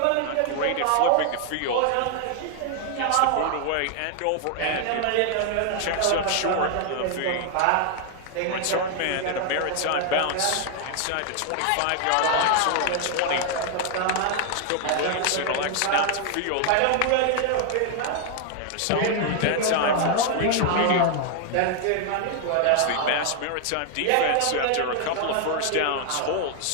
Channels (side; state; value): both; different; correlation 0.00